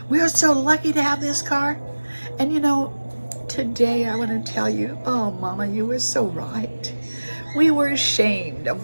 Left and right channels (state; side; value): inverted; both; correlation -1.00